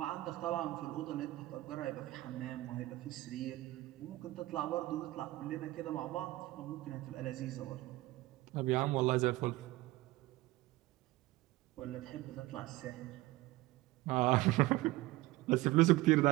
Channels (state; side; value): quieter; left; 18.4 dB